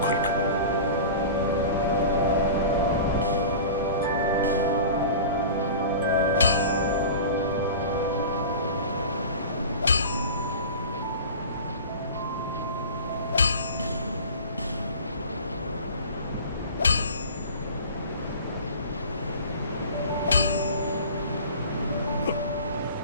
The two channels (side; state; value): both; inverted; correlation -0.36